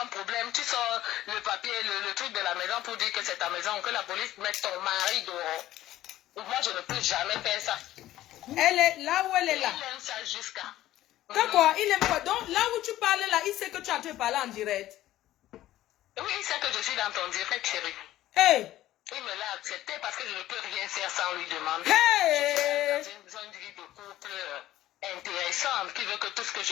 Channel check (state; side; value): quieter; right; 14.4 dB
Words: un problème, tu sors le papier, le truc de la maison pour dire que c'est ta maison, que la police mette ton mari dehors. Moi, je ne peux jamais faire ça. Elle est là où elle est là. Il aime ça jusqu'à. D'accord, il aime quoi? Donc, là où tu parles là, il sait que tu as en train de parler en direct. Oui, il sait que je suis dans ton direct, chérie. Hey! Il me l'a accepté parce que je ne peux rien faire sans lui demander. Hey! Je suis dans une vie de couple intéressante qui veut que tout ce que je